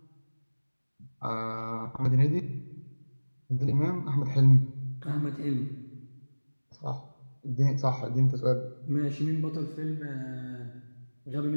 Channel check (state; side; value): inverted; both; correlation -1.00